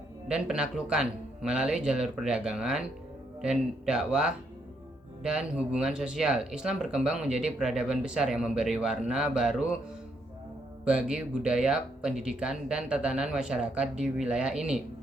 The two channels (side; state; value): both; normal; correlation 0.75